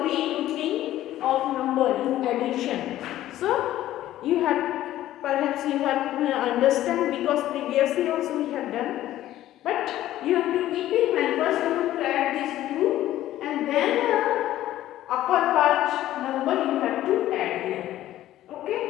regrouping of number in addition. So you have, perhaps you have understand, because previously also we have done. But you have to keep in mind, first you have to add these two, and then upper part number you have to add here. Okay?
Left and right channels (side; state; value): right; quieter; 13.8 dB